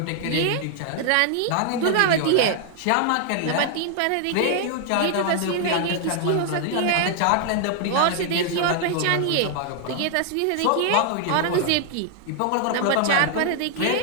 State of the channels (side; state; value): both; different; correlation 0.00